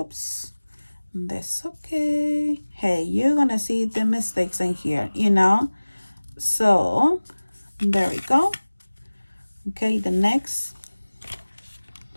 that's okay. Hey, you're gonna see the mistakes in here, you know. So there we go. Okay, the next,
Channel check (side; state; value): both; inverted; correlation -1.00